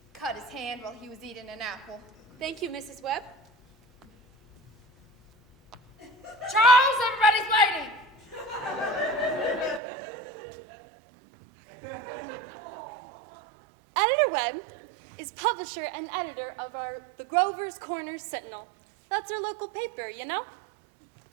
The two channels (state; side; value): drops out; left; at 9.8 s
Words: cut his hand while he was eating an apple. Thank you, Mrs. Webb. Charles, everybody's waiting. Editor Webb is publisher and editor of the Grover's Corner Sentinel. That's our local paper, you know?